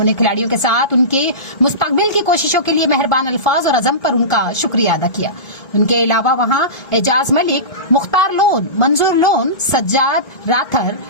खिलाड़ियों के साथ उनके मुस्तकबिल की कोशिशों के लिए मेहरबान अल्फाज और अज़म पर उनका शुक्रिया अदा किया। उनके अलावा वहां एजाज मलिक, मुख्तार लोन, मंजूर लोन, सज्जाद राथर,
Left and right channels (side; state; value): right; late; 1.4 ms